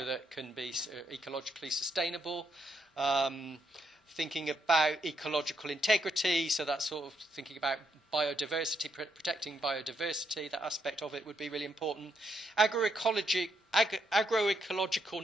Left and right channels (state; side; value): normal; both; correlation 0.77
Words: that can be ecologically sustainable. thinking about ecological integrity, so that's sort of thinking about biodiversity, protecting biodiversity, that aspect of it would be really important. Agroecological